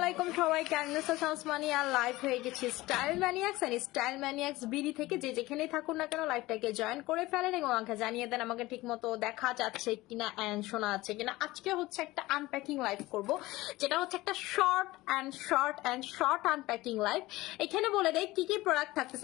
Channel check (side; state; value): right; quieter; 18.9 dB